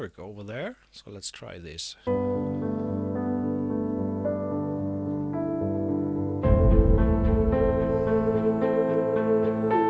over there. So let's try this.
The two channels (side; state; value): both; identical; correlation 1.00